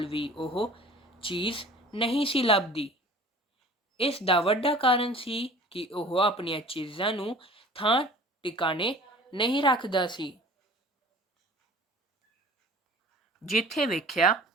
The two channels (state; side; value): normal; both; correlation 0.44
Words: ਵੀ ਉਹ ਚੀਜ਼ ਨਹੀਂ ਸੀ ਲੱਭਦੀ। ਇਸ ਦਾ ਵੱਡਾ ਕਾਰਨ ਸੀ ਕਿ ਉਹ ਆਪਣੀਆਂ ਚੀਜ਼ਾਂ ਨੂੰ ਥਾਂ ਟਿਕਾਣੇ ਨਹੀਂ ਰੱਖਦਾ ਸੀ। ਜਿੱਥੇ ਵੇਖਿਆ